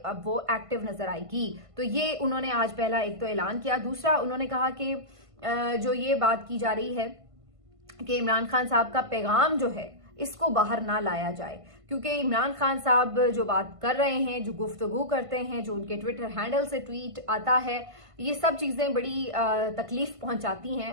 वो एक्टिव नजर आएगी। तो ये उन्होंने आज पहला एक तो ऐलान किया। दूसरा, उन्होंने कहा कि जो ये बात की जा रही है कि इमरान खान साहब का पैगाम जो है इसको बाहर ना लाया जाए, क्योंकि इमरान खान साहब जो बात कर रहे हैं, जो गुफ्तगू करते हैं, जो उनके ट्विटर हैंडल से ट्वीट आता है, ये सब चीजें बड़ी तकलीफ पहुंचाती हैं।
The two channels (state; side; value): late; left; 1.5 ms